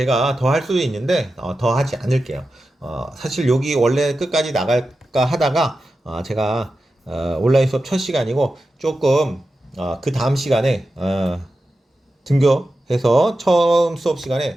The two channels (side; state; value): both; normal; correlation 0.92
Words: 더 할 수도 있는데 더 하지 않을게요. 사실 여기 원래 끝까지 나갈까 하다가 제가 온라인 수업 첫 시간이고 조금 그 다음 시간에 등교해서 처음 수업 시간에